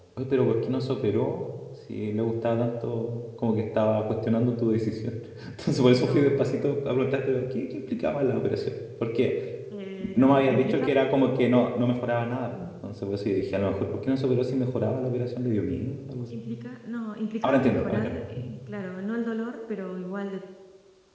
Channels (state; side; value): identical; both; correlation 1.00